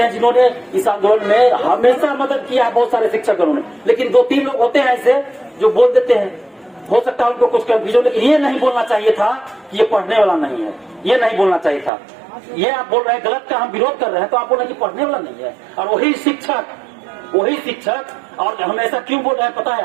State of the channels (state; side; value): drops out; left; at 11.9 s